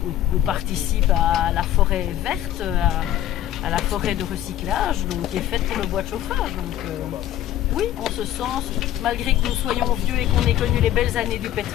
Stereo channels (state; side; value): quieter; right; 12.5 dB